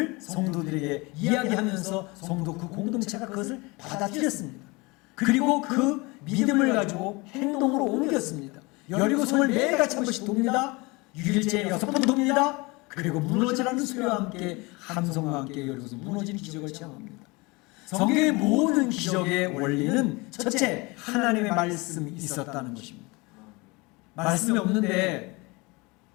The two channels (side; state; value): right; quieter; 25.3 dB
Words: 성도들에게 이야기하면서 성도 그 공동체가 그것을 받아들였습니다. 그리고 그 믿음을 가지고 행동으로 옮겼습니다. 여리고성을 매일같이 한 번씩 돕니다. 6일째 6번 돕니다. 그리고 무너지라는 소리와 함께 함성과 함께 여리고성 무너지는 기적을 체험합니다. 성경의 모든 기적의 원리는 첫째, 하나님의 말씀이 있었다는 것입니다. 말씀이 없는데